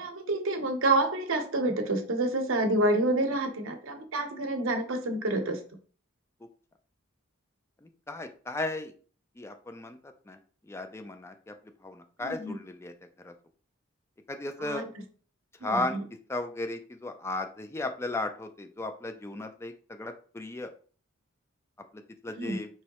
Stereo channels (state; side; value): normal; both; correlation 0.16